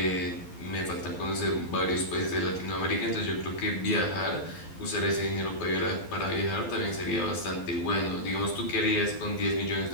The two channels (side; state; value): right; late; 12 ms